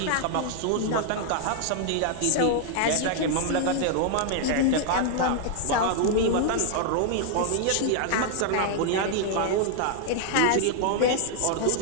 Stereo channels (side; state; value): both; different; correlation 0.00